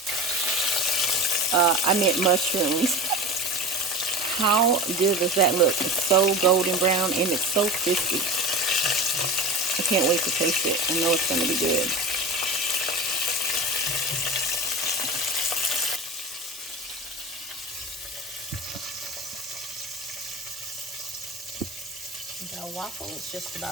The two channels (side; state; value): both; normal; correlation 0.31